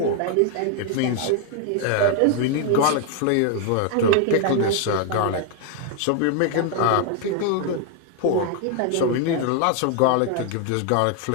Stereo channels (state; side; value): different; both; correlation 0.00